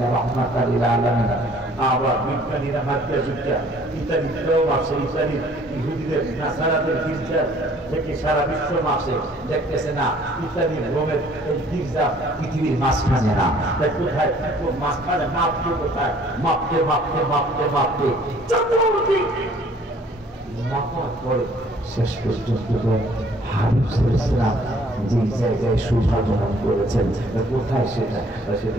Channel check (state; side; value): normal; both; correlation 0.57